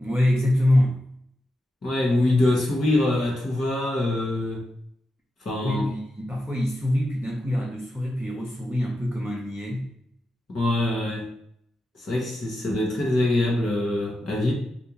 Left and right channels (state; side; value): normal; both; correlation 0.88